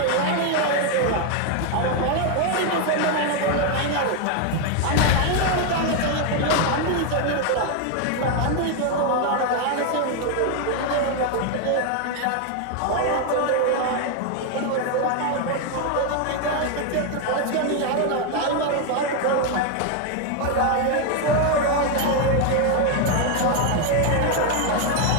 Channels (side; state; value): both; different; correlation 0.01